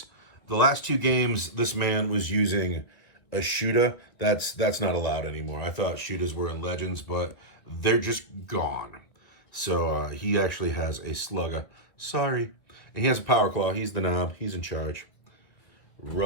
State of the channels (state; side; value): late; right; 1.6 ms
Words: The last two games, this man was using a shooter. That's not allowed anymore. I thought shooters were in Legends, but they're just gone. So he actually has a slugger. Sorry. And he has a power claw. He's the knob. He's in charge.